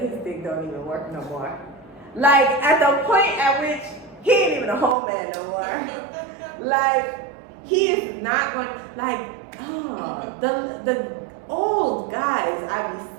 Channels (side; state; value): left; drops out; at 5.0 s